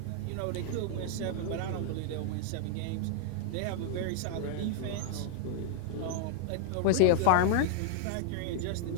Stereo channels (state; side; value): different; both; correlation -0.01